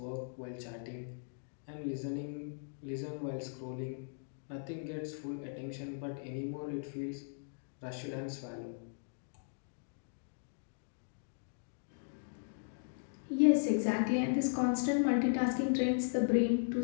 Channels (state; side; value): silent; right; digital silence